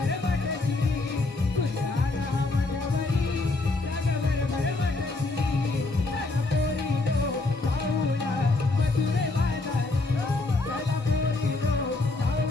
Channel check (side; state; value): right; quieter; 3.3 dB